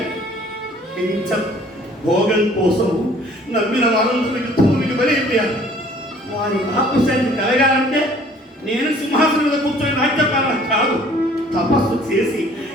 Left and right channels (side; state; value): both; normal; correlation 0.55